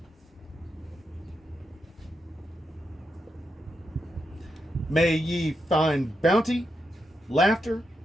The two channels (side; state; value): both; normal; correlation 0.84